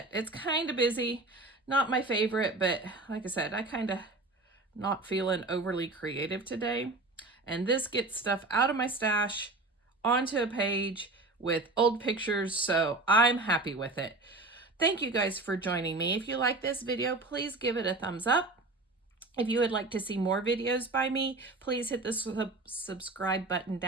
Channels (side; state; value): left; quieter; 3.1 dB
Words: It's kind of busy. Not my favorite, but like I said, I kind of not feeling overly creative today. And this gets stuff out of my stash onto a page with old pictures, so I'm happy with it. Thank you guys for joining me. If you like this video, please give it a thumbs up. If you would like to see more videos by me, please hit the subscribe button